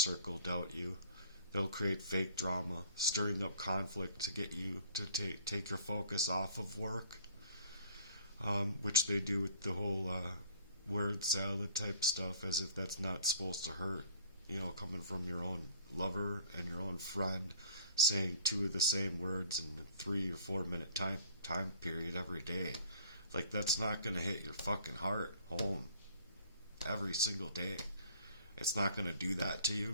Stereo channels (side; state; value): both; inverted; correlation -0.54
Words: doubt you. They'll create fake drama, stirring up conflict to get you to take your focus off of work, which they do with the whole word salad type stuff, as if that's not supposed to hurt. You know, coming from your own lover and your own friend, saying 2 of the same words in a 3 or 4 minute time period every day. Like, that's not going to hit your fucking heart home every single day. It's not going to do that to